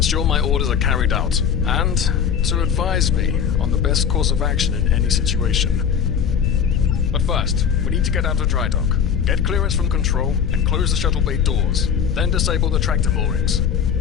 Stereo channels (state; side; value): quieter; right; 7.6 dB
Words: my orders are carried out, and to advise me on the best course of action in any situation. But first, we need to get out of dry dock, get clearance from control, and close the shuttle bay doors, then disable the tractor moorings.